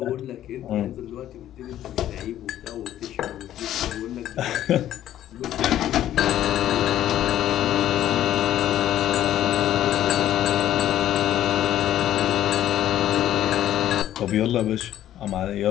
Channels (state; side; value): quieter; right; 12.2 dB